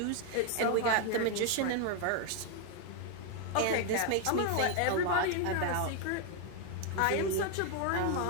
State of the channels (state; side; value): different; both; correlation 0.01